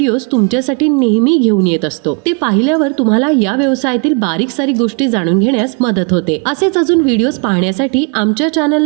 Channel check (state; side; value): quieter; left; 37.6 dB